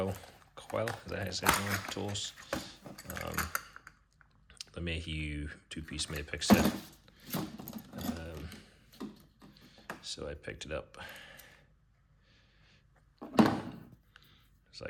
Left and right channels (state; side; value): identical; both; correlation 1.00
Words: is that how you say it? Tools. The Mayhew two-piece Maypick set. So I picked it up. It's